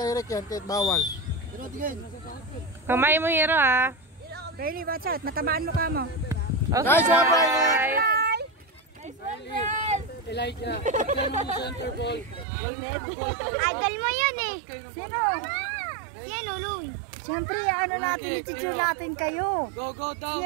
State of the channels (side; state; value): left; drops out; at 12.5 s